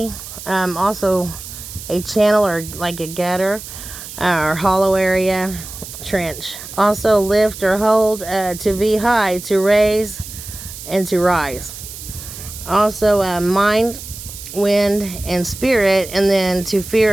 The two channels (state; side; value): noise; right; hiss, 12 dB below the sound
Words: also a channel or like a gutter or hollow area, trench. Also, lift or hold, to be high, to raise, and to rise. Also, mind, wind, and spirit, and then to